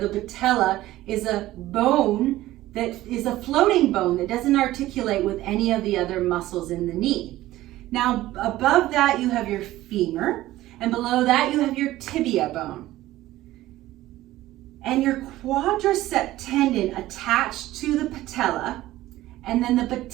patella is a bone that is a floating bone that doesn't articulate with any of the other muscles in the knee. Now, above that you have your femur, and below that you have your tibia bone. And your quadricep tendon attached to the patella, and then the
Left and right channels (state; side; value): quieter; left; 15.9 dB